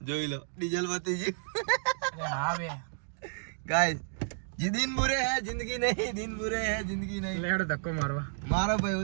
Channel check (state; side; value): silent; left; digital silence